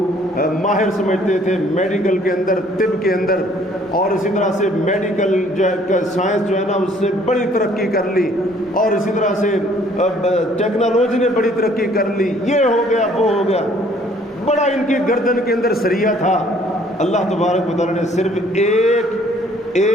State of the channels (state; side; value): normal; both; correlation 0.60